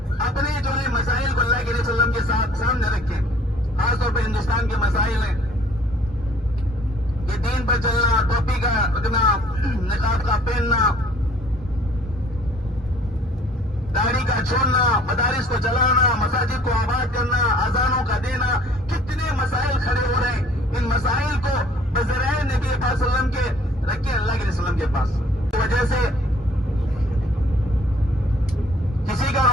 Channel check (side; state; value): both; normal; correlation 0.57